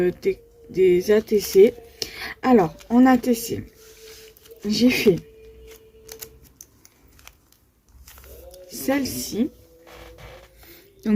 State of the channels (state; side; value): identical; both; correlation 1.00